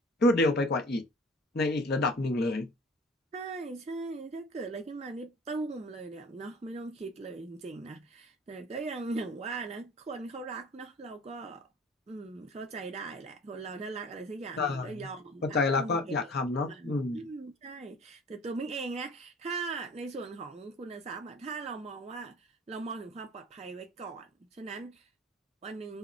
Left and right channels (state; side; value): normal; both; correlation 0.46